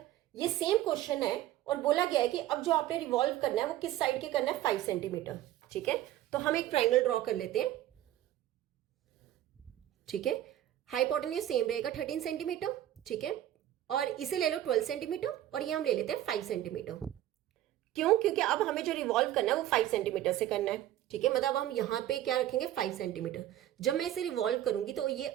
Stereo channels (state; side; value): quieter; left; 13.1 dB